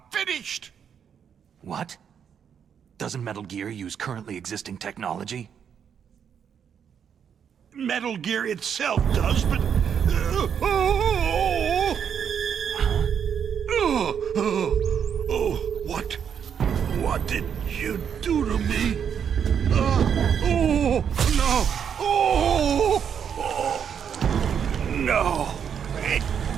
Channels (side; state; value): left; quieter; 7.8 dB